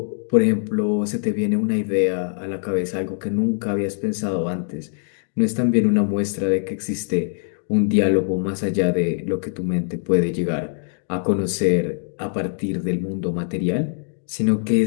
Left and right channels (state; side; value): silent; right; digital silence